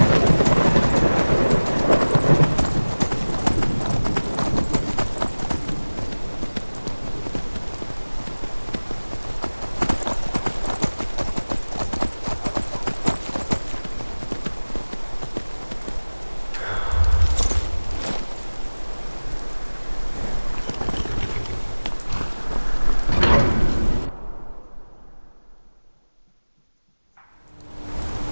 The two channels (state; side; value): inverted; both; correlation -1.00